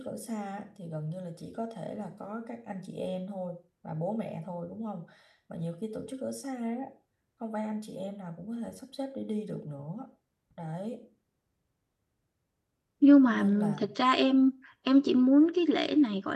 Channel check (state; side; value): identical; both; correlation 1.00